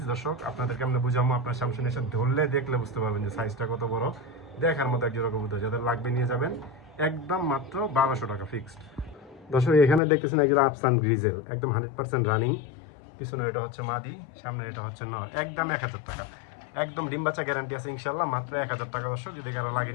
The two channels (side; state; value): right; drops out; at 10.0 s